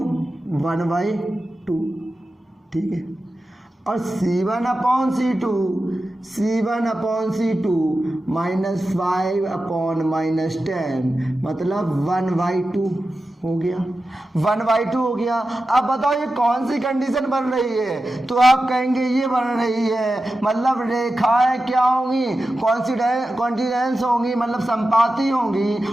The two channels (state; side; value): normal; both; correlation 0.92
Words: 1/2, ठीक है। और c1/c2 -5/10 मतलब 1/2 हो गया, 1/2 हो गया। अब बताओ ये कौन सी कंडीशन बन रही है? तो आप कहेंगे ये बन रही है, मतलब रेखाएं क्या होंगी, कॉन्टिनेंस होंगी, मतलब संपाती